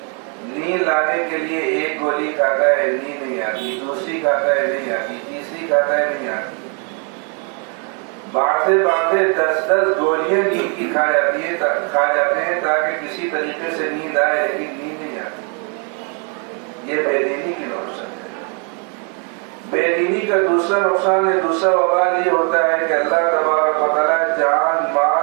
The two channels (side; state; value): left; quieter; 38.0 dB